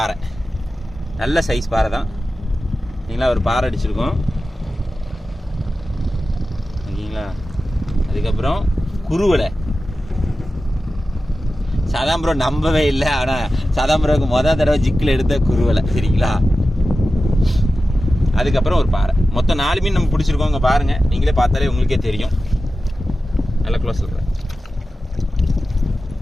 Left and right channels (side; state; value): both; normal; correlation 0.94